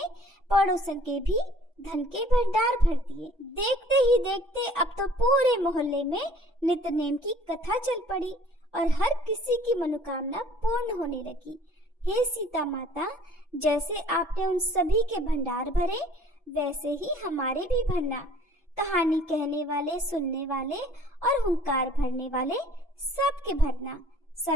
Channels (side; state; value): both; normal; correlation 0.54